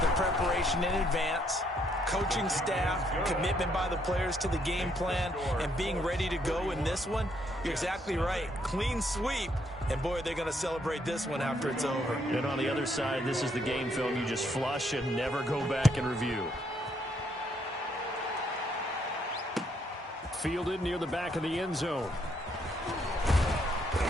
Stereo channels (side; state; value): both; normal; correlation 0.72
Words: the preparation in advance, coaching staff, commitment by the players to the game plan, and being ready to go in this one? You're exactly right. Clean sweep. And, boy, they're going to celebrate this one after it's over. And on the other side, this is the game film you just flush and never go back and review. Fielded near the back of the end zone.